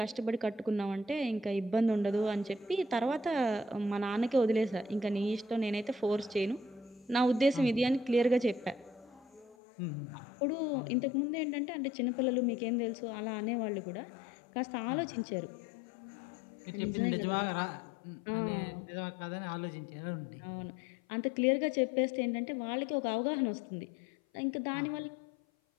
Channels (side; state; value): right; drops out; at 9.6 s